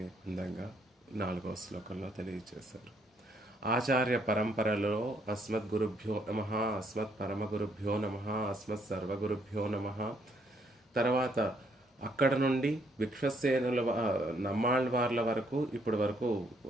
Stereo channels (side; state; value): both; normal; correlation 0.70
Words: అందంగా 4వ శ్లోకంలో తెలియజేశారు. ఆచార్య పరంపరలో అస్మద్గురుభ్యో నమః, అస్మత్ పరమగురుభ్యో నమః, అస్మత్ సర్వగురుభ్యో నమః. తర్వాత అక్కడ నుండి విశ్వసేనుల నమ్మాళ్వార్ల వరకు ఇప్పటి వరకు